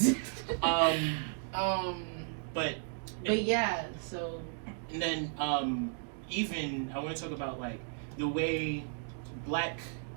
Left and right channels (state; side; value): silent; left; 55 dB below the other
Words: But But yeah, so and then even I want to talk about like the way